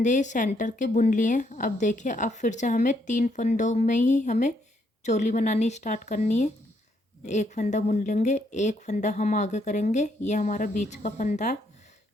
सेंटर के बुन लिए। अब देखिए अब फिर से हमें 3 फंदों में ही हमें चोली बनानी स्टार्ट करनी है। एक फंदा बुन लेंगे, एक फंदा हम आगे करेंगे। ये हमारा बीच का फंदा है।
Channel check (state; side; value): normal; both; correlation 0.73